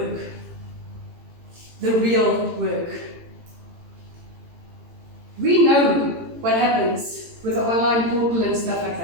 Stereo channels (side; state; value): left; late; 18 ms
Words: The real work. We know what happens with the online portal and stuff like